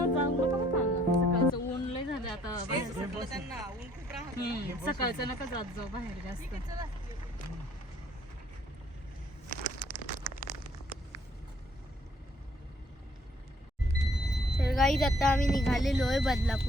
जाऊ नका बरं का. सकाळचं ऊन लय झालं आता बाहेर. सकाळचं नका जात जाऊ बाहेर जास्त. तर गाईज आता आम्ही निघालेलो आहे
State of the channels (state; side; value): normal; both; correlation 0.63